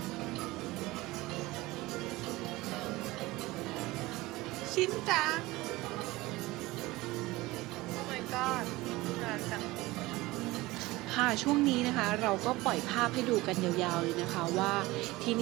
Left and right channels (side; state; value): left; quieter; 20.0 dB